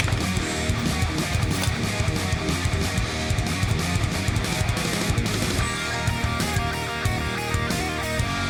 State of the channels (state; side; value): identical; both; correlation 1.00